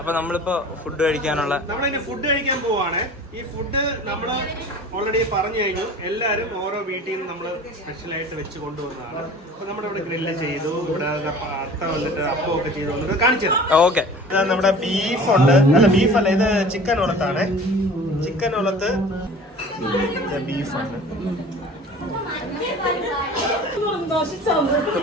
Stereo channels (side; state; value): both; normal; correlation 0.43